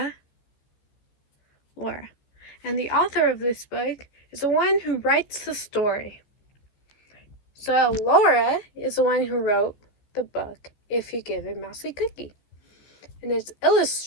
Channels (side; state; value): right; late; 14 ms